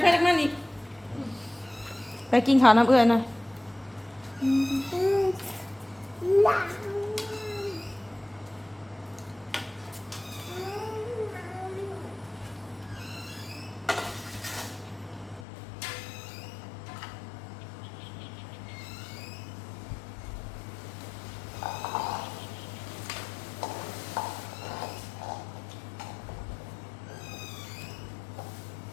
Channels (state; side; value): drops out; right; at 15.5 s